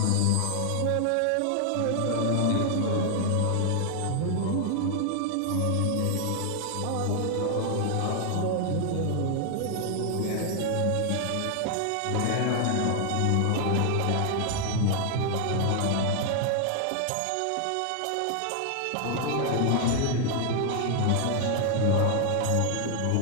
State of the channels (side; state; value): both; different; correlation 0.00